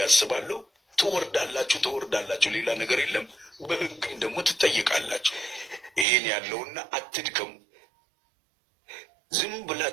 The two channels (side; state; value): left; drops out; at 6.1 s